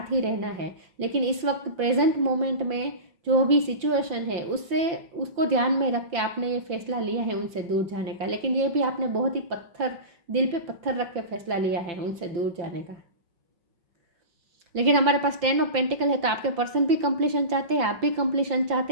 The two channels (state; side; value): late; left; 5.9 ms